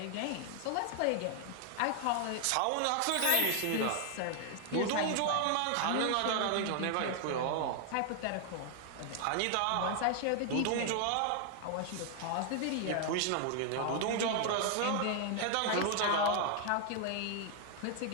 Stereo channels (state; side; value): different; both; correlation 0.00